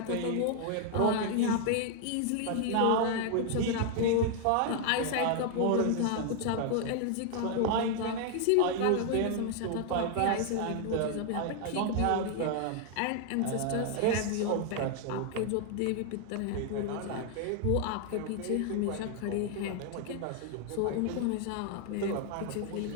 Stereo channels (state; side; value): different; both; correlation 0.00